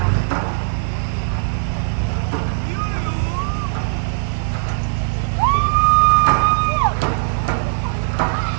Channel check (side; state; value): left; silent; digital silence